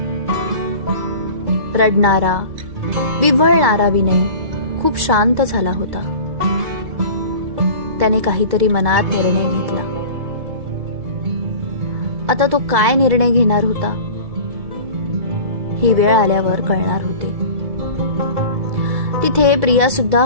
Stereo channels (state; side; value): late; left; 2.2 ms